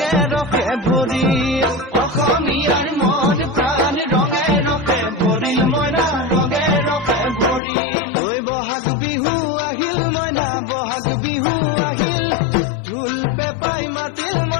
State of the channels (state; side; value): drops out; right; at 7.6 s